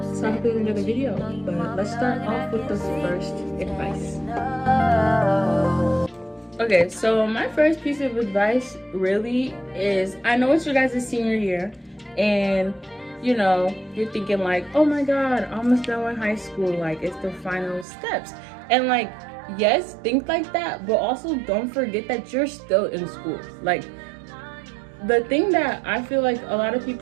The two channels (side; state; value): left; drops out; at 17.9 s